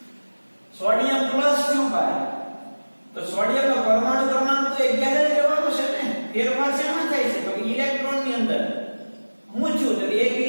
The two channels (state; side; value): inverted; both; correlation -1.00